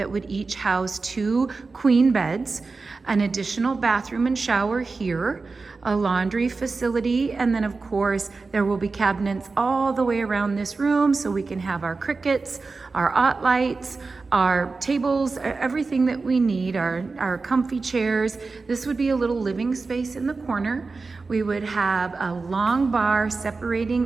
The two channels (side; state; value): left; quieter; 4.1 dB